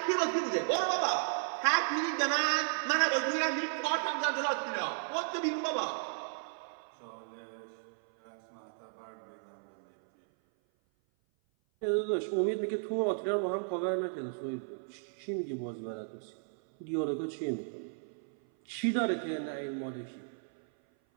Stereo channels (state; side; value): silent; left; 55 dB below the other